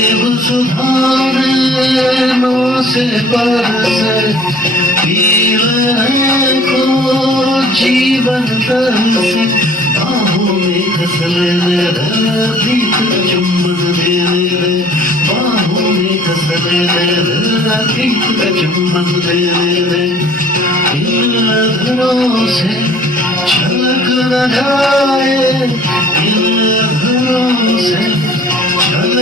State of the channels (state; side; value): normal; both; correlation 0.52